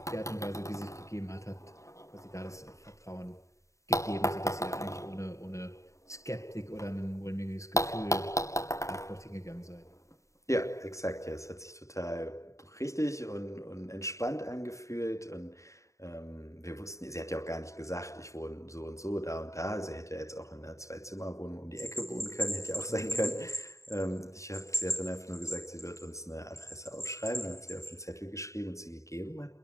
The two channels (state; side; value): late; right; 0.15 ms